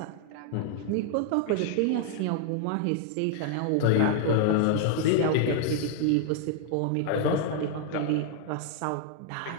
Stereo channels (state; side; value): different; both; correlation 0.00